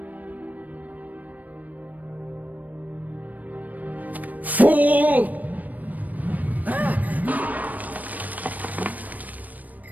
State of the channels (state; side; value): late; left; 0.078 ms